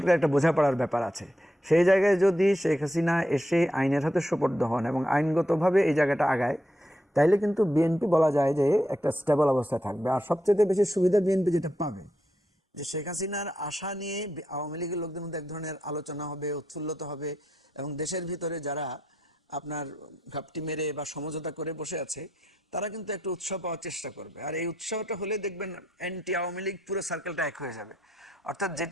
একটা বোঝাপড়ার ব্যাপার আছে। সেই জায়গায় যদি শেখ হাসিনা এসে আইনের হাতে সোপর্দ হন এবং আইনগতভাবে এই জায়গাটা আগায়, তাইলে কিন্তু বিএনপি বলা যায় যে একটা স্টেবল অবস্থায় থাকবে। আর সবচেয়ে বেশি সুবিধা বিএনপি যেটা পাবে যে শেখ হাসিনার আশা নিয়ে আওয়ামী লীগের লোকদের মধ্যে এক ধরনের আলোচনা হবে, উৎফুল্লতা হবে, এবং দেশের ভিতরে যারা আপনার ঘাপটি মেরে বা সমঝোতা করে বসে আছে তারা কিন্তু একটু উৎসাহ পাওয়ার চেষ্টা করবে। আর এই উৎসাহটা হলে দেখবেন অ্যান্টি আওয়ামী লীগ পুরো সার্কেলটা এক হয়ে যাবে। অর্থাৎ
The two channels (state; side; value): normal; both; correlation 0.81